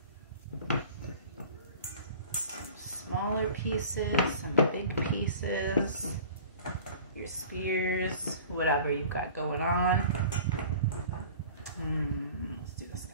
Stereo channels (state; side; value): inverted; both; correlation -0.43